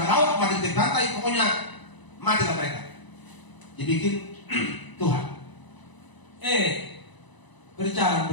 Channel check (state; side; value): late; right; 1.0 ms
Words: laut, mati di pantai, pokoknya matilah mereka. Dibikin Tuhan. Berjalan.